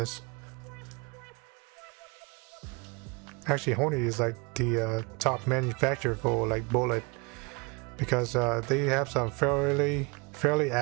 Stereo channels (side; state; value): left; quieter; 30.0 dB